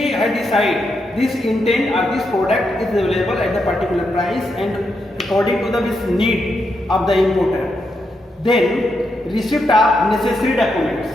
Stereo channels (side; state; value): both; normal; correlation 0.82